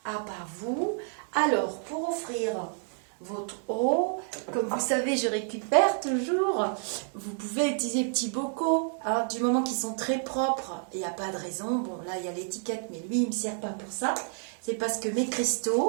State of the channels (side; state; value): left; silent; 55 dB below the other